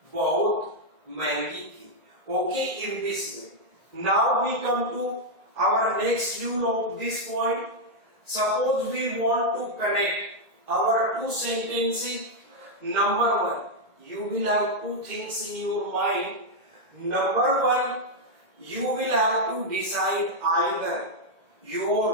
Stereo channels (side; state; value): left; late; 1.8 ms